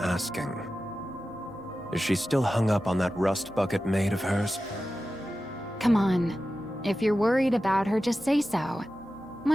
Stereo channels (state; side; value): normal; both; correlation 0.93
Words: Is she still hung up on that rust bucket maid of hers? Come on. If you're worried about her, just say so.